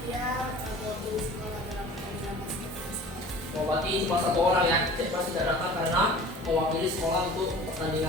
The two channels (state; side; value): normal; both; correlation 0.43